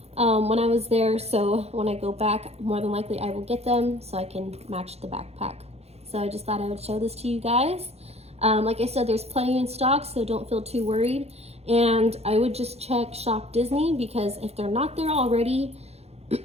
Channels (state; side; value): late; left; 0.30 ms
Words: when I was there, so when I go back, more than likely I will get them so I can match the backpack. So I just thought I would show this to you guys. Like I said, there's plenty in stock, so don't feel too worried. And I would just check Shop Disney, because if they're not there already,